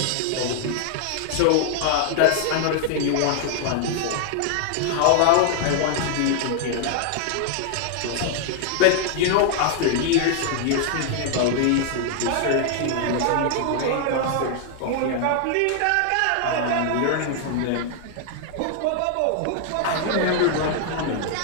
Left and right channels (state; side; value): different; both; correlation 0.00